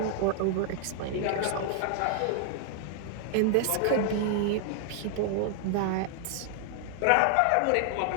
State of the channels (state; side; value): different; both; correlation 0.00